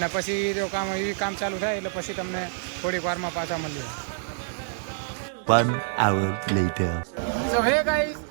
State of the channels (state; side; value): silent; left; digital silence